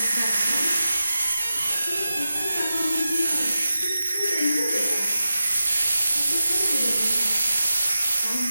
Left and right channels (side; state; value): both; inverted; correlation -0.92